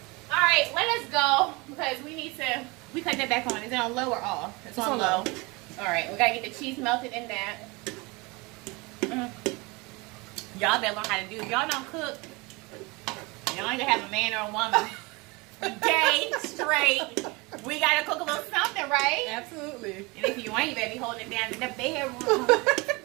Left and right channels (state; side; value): quieter; left; 25.8 dB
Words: All right, let us go because we need to. We cut that back on. Is it on low or off? It's on low. All right, we gotta get the cheese melted in that. Y'all better learn how to do. If y'all don't cook, y'all ain't gonna have a man or a woman. Day straight. We gotta cook a little something, right? Absolutely. And if you ain't, you better be holding it down in the bedroom.